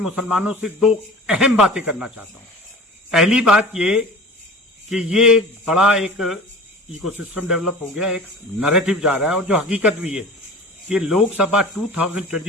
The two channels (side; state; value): both; normal; correlation 0.38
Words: से दो अहम बातें करना चाहता हूं। पहली बात ये कि ये बड़ा एक इकोसिस्टम डेवलप हो गया, एक नैरेटिव जा रहा है और जो हकीकत भी है कि लोकसभा